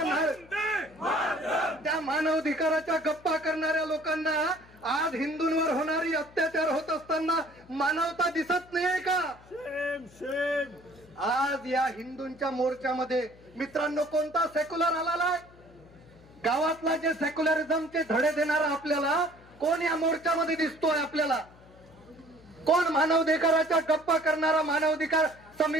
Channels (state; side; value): noise; left; hum, 24 dB below the sound